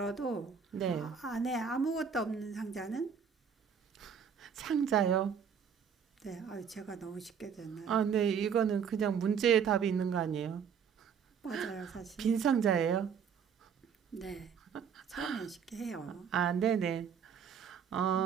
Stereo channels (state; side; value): quieter; left; 7.1 dB